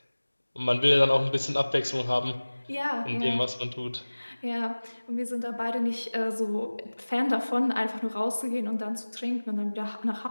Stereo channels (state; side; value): inverted; both; correlation -1.00